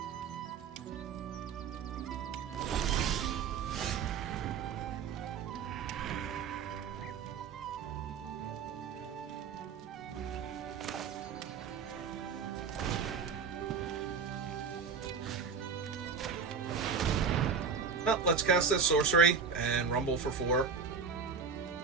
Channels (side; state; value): left; quieter; 5.8 dB